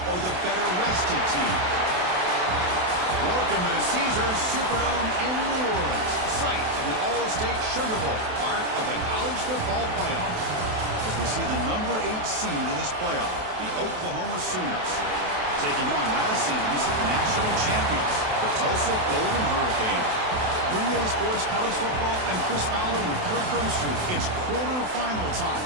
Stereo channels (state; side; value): late; left; 28 ms